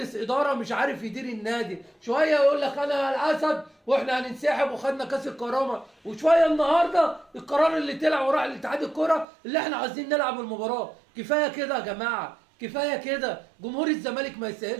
اداره مش عارف يدير النادي. شويه يقول لك انا الاسد واحنا هننسحب وخدنا كاس الكرامه، وشويه النهارده القرار اللي طلع وراح لاتحاد الكره اللي احنا عايزين نلعب المباراه. كفايه كده يا جماعه، كفايه كده. جمهور الزمالك ما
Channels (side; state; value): left; drops out; at 9.2 s